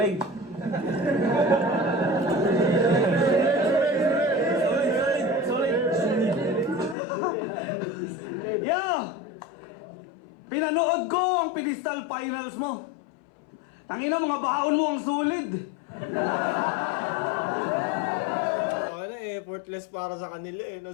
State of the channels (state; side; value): drops out; right; at 7.0 s